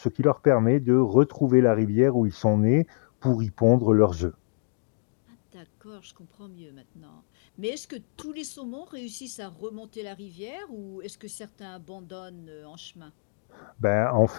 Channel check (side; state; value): right; silent; digital silence